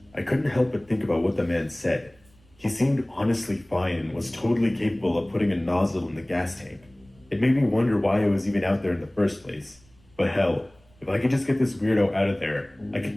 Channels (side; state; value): right; noise; rumble, 30 dB below the sound